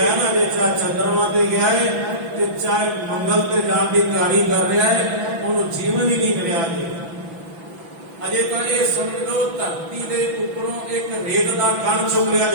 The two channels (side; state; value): left; late; 6.0 ms